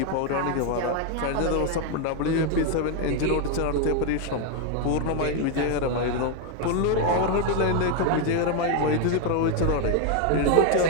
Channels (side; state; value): both; different; correlation 0.01